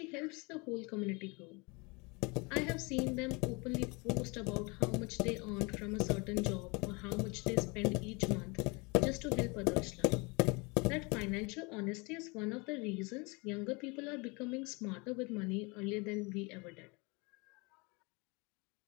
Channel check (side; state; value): right; quieter; 28.4 dB